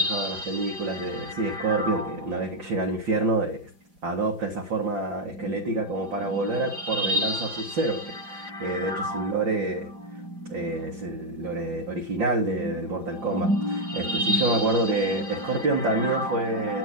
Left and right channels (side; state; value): left; late; 4.9 ms